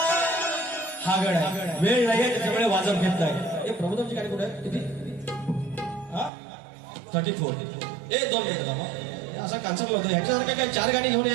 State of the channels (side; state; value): left; drops out; at 6.3 s